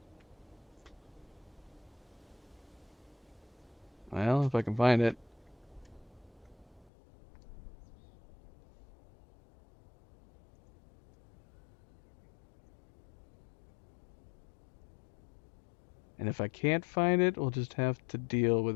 Well, if I can find it. And if I can't find it, we'll just have to deal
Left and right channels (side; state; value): right; drops out; at 6.9 s